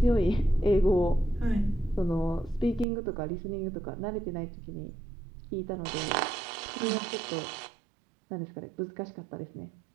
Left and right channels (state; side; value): drops out; left; at 2.9 s